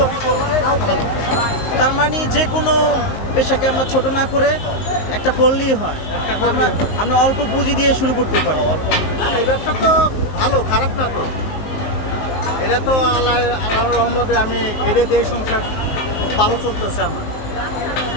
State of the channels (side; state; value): right; late; 19 ms